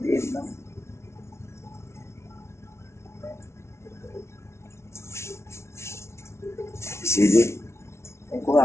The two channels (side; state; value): right; late; 0.13 ms